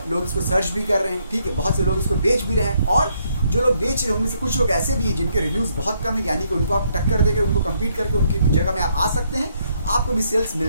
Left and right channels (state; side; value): inverted; both; correlation -0.73